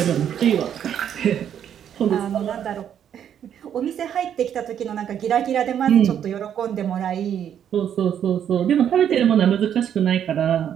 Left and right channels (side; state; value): left; quieter; 9.3 dB